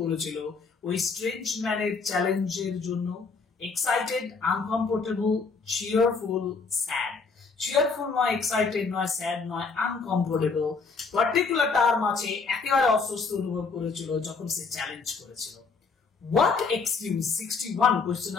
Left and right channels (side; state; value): right; quieter; 4.7 dB